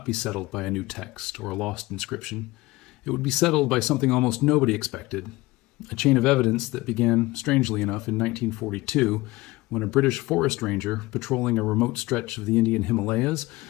be settled by a new text or a lost inscription. It would be settled by something almost nobody expected, a chain of evidence that began, strangely enough, in 1942, when a British forest ranger patrolling a remote stretch of the Indian Himalayas,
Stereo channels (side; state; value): right; quieter; 20.4 dB